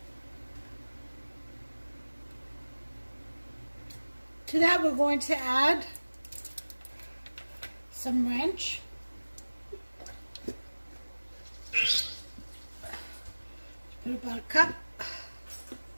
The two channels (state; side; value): inverted; both; correlation -1.00